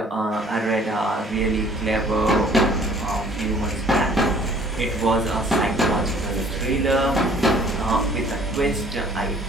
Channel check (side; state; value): both; normal; correlation 0.55